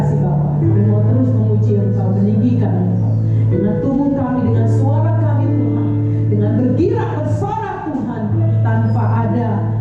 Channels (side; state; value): both; identical; correlation 1.00